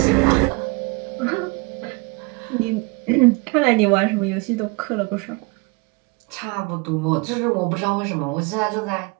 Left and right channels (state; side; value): quieter; left; 26.5 dB